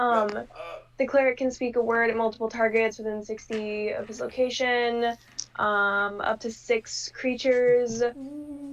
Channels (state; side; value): identical; both; correlation 1.00